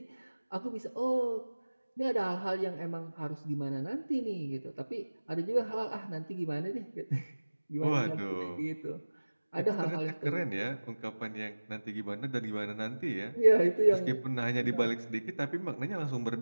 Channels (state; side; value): inverted; both; correlation -1.00